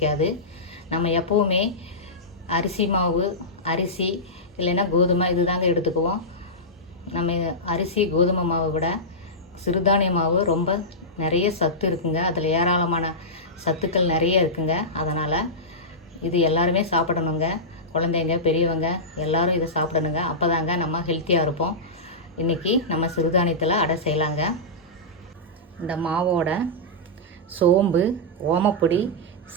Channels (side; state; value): both; normal; correlation -0.14